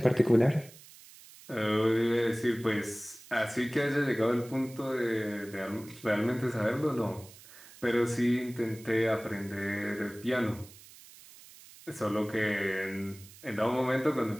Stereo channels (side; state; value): right; noise; hiss, 20 dB below the sound